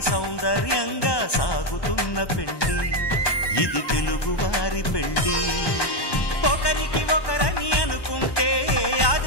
సౌందర్యంగా సాగుతున్న పెళ్ళి ఇది తెలుగువారి పెళ్ళి ఒకరికి ఒకరని అనుకుంటే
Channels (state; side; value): late; right; 1.1 ms